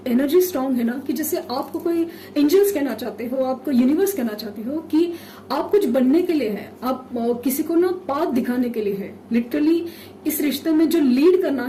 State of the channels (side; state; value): both; identical; correlation 1.00